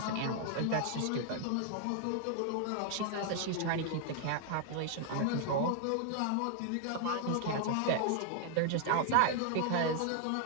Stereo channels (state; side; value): different; both; correlation 0.00